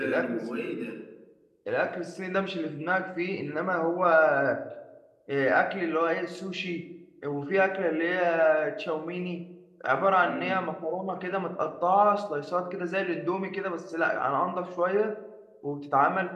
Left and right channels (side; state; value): both; identical; correlation 1.00